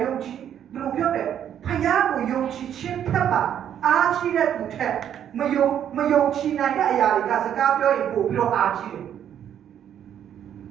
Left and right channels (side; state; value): left; quieter; 9.7 dB